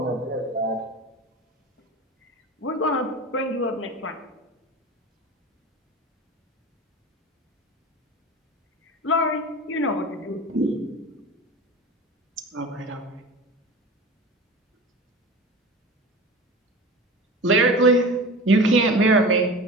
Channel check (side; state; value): both; normal; correlation 0.34